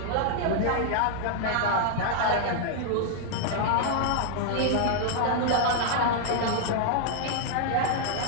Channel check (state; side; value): different; both; correlation 0.00